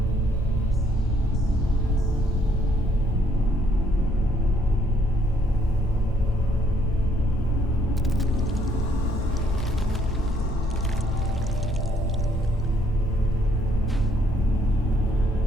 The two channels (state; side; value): normal; both; correlation 0.68